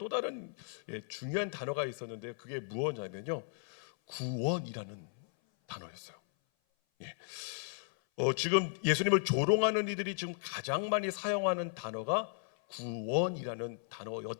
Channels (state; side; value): silent; right; 54 dB below the other